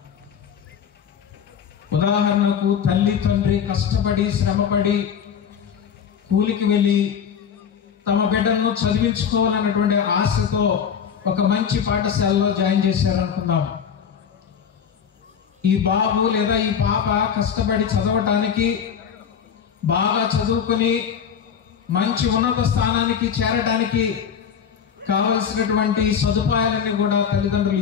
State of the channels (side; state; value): right; quieter; 7.6 dB